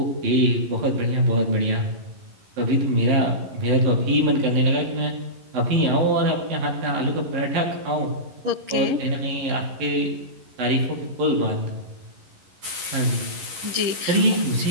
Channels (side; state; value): left; late; 11 ms